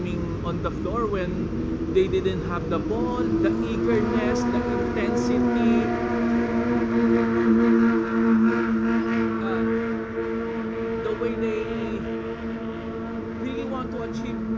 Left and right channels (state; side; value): identical; both; correlation 1.00